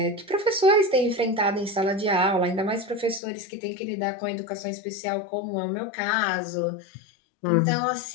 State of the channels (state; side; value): drops out; right; at 3.2 s